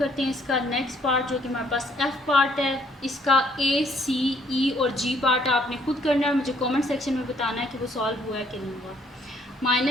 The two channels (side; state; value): both; normal; correlation 0.65